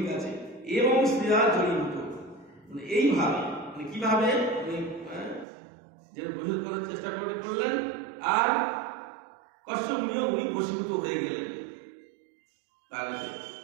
আছে, এবং শ্রেয়া জড়িত। মানে এইভাবে, মানে কিভাবে উনি যে বশীভূত করার চেষ্টা করলেন, আর কশ্যপ মুনিও উনি বশীভূত হয়ে গেলেন তার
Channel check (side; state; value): left; drops out; at 5.5 s